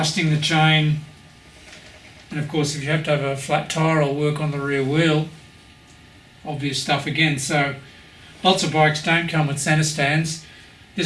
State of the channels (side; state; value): both; identical; correlation 1.00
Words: the chain. And of course, if you have to have a flat tyre or work on the rear wheel, obvious stuff again. So lots of bikes don't come with centre stands.